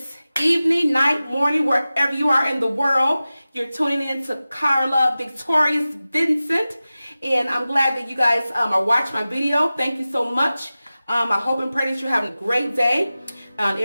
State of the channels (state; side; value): inverted; both; correlation -0.96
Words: evening, night, morning, wherever you are in the world, you're tuning in to Carla Victorious Vincent, and I'm glad that you guys are watching my video. Thank you so much. I hope and pray that you're having a great day.